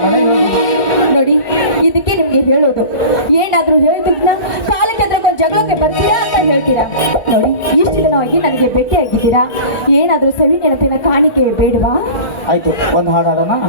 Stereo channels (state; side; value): late; right; 1.9 ms